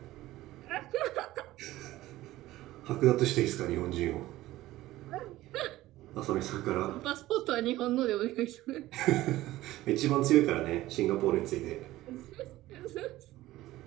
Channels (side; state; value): left; quieter; 16.4 dB